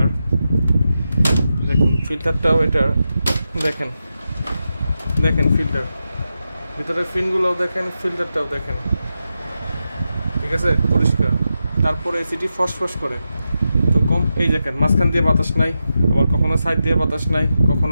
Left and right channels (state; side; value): inverted; both; correlation -0.89